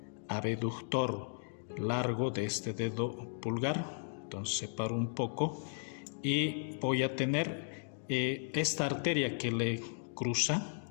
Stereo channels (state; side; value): silent; right; digital silence